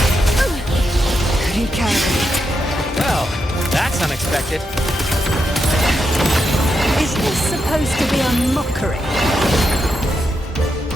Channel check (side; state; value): both; normal; correlation 0.84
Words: Recalibrate. Well, that's unexpected. Is this supposed to be a mockery?